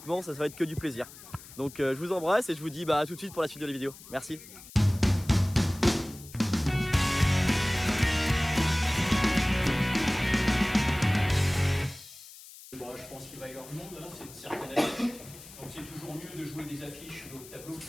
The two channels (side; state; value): left; noise; hiss, 18 dB below the sound